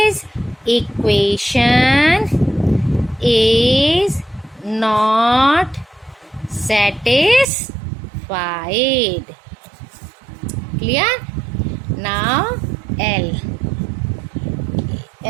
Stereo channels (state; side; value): drops out; left; at 7.5 s